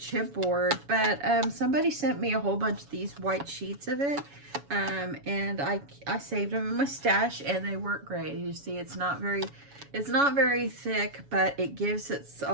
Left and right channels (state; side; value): late; left; 7.1 ms